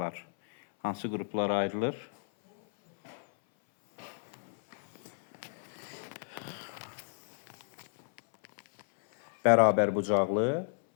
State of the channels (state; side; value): silent; right; 56 dB below the other